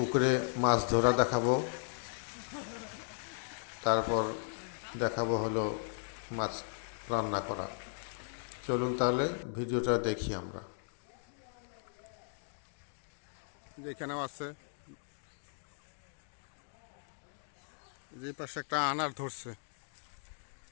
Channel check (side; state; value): right; silent; digital silence